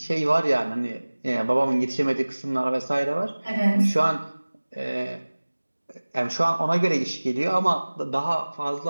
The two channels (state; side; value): inverted; both; correlation -1.00